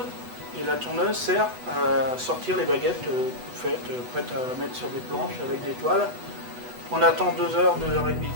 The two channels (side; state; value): left; late; 8.1 ms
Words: et la tourneuse sert à sortir les baguettes toutes faites, prêtes à mettre sur des planches avec des toiles. On attend 2 heures, 2 heures et demie de